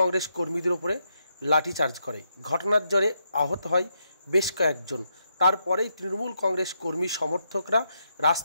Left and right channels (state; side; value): inverted; both; correlation -0.80